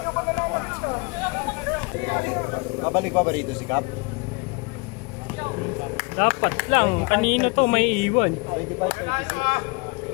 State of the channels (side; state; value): right; quieter; 30.7 dB